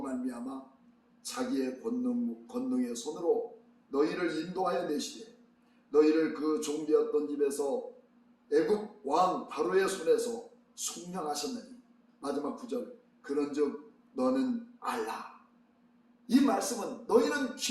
말미암아 자기의 권능의 손으로 너희를 인도하여 내시되 너희를 그 종되었던 집에서 애굽 왕 바로의 손에서 속량하셨느니. 마지막 9절 그런즉 너는 알라. 이 말씀은 너희는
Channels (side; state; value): both; identical; correlation 1.00